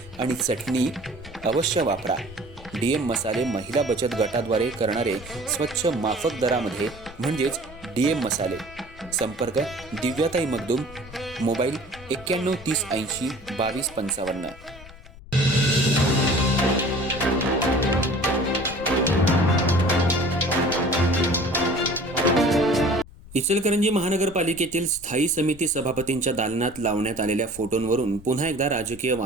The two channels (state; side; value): noise; left; rumble, 18 dB below the sound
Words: आणि चटणी अवश्य वापरा. डीएम मसाले महिला बचत गटाद्वारे करणारे स्वच्छ माफक दरामध्ये म्हणजेच डीएम मसाले. संपर्क दिव्याताई मगदूम, मोबाईल 91 30 80 22 55. इचलकरंजी महानगरपालिकेतील स्थायी समिती सभापतींच्या दालनात लावण्यात आलेल्या फोटोंवरून पुन्हा एकदा राजकीय